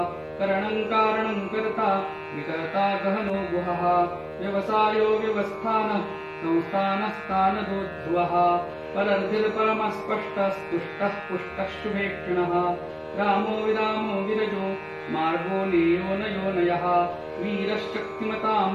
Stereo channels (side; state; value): both; identical; correlation 1.00